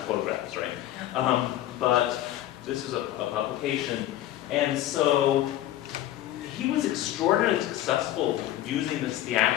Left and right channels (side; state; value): right; quieter; 13.5 dB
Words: photographs, right? But this is a publication. And so he was extraordinarily successful using this